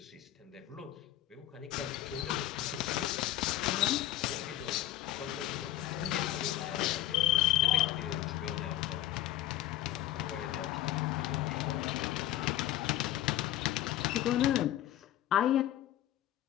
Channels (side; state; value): right; quieter; 13.6 dB